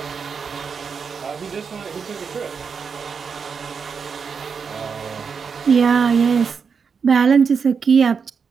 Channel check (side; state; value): left; quieter; 5.9 dB